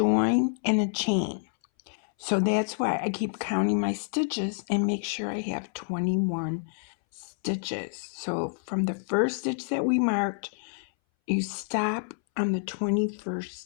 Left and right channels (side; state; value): right; silent; 59 dB below the other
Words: and a chain. So that's why I keep counting my stitches and make sure I have 21 stitches. So from the first stitch that we marked, you stop on the 21st